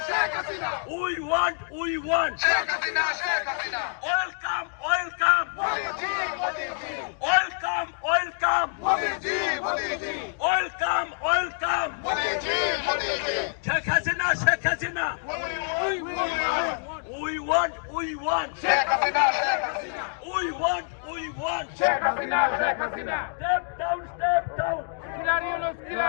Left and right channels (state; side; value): silent; right; digital silence